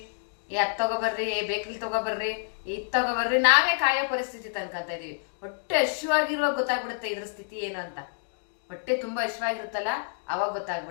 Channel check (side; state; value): right; silent; digital silence